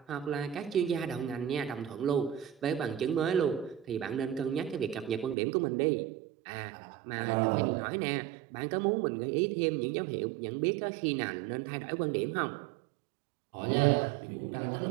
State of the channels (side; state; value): left; drops out; at 5.4 s